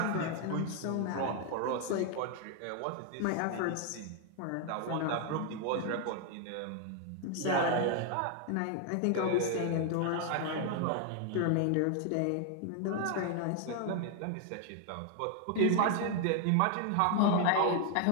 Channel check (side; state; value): both; different; correlation 0.00